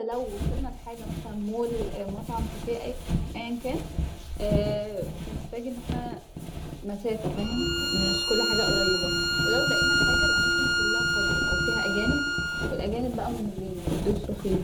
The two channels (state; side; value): identical; both; correlation 1.00